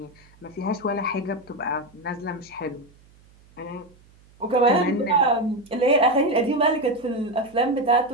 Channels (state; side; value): noise; right; hum, 28 dB below the sound